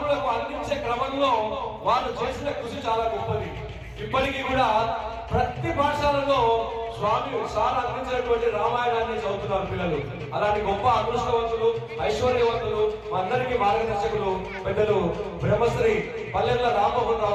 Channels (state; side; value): identical; both; correlation 1.00